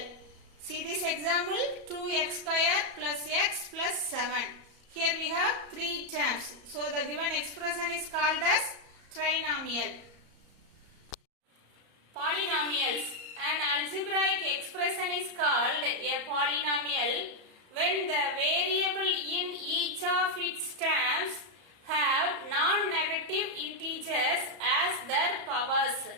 See this example, 2x square plus x plus 7. Here we have three terms. So, the given expression is called as trinomial. Polynomials. An algebraic expression is called a polynomial when the variable in each of its terms have non-negative integers as their powers.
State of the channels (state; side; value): late; left; 34 ms